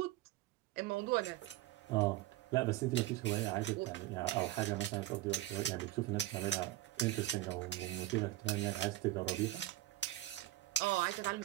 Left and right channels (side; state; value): left; quieter; 15.5 dB